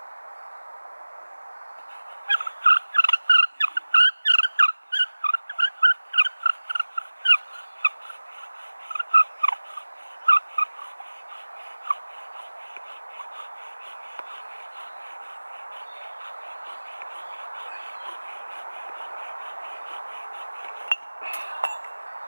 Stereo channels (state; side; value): inverted; both; correlation -1.00